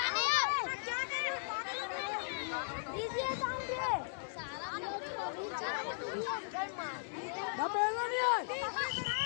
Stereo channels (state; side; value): silent; right; 53 dB below the other